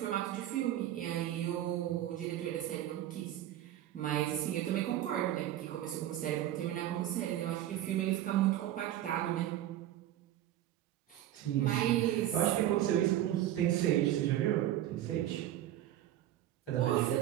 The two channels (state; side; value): quieter; left; 12.8 dB